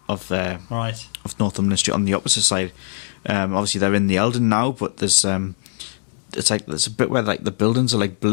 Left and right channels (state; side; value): silent; right; digital silence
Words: Northumberland Street on the opposite side. Obviously, they're in the Eldon now, but there's there's a bit where like the buildings are like